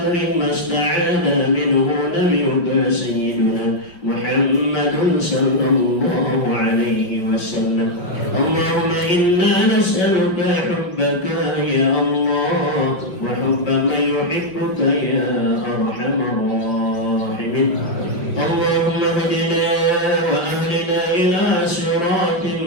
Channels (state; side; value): late; right; 5.8 ms